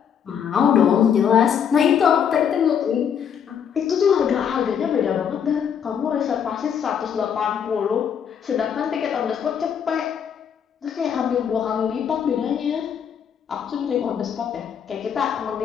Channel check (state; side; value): quieter; right; 8.0 dB